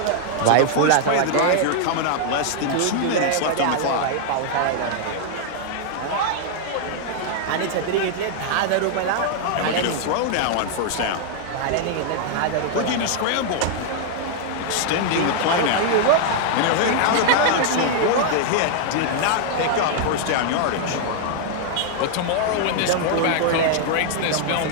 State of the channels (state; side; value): different; both; correlation 0.00